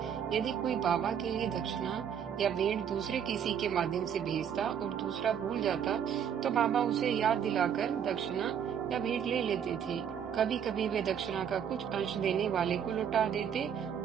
यदि कोई बाबा के लिए दक्षिणा या भेंट दूसरे किसी के माध्यम से भेजता और दूसरा भूल जाता तो बाबा उसे याद दिलाकर दक्षिणा या भेंट ले लेते थे। कभी कभी वे दक्षिणा का कुछ अंश देने वाले को लौटा देते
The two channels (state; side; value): quieter; left; 8.4 dB